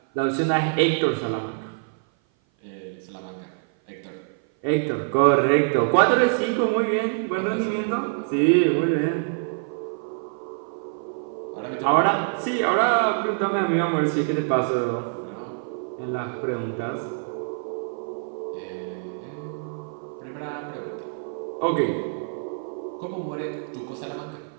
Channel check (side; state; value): left; silent; 56 dB below the other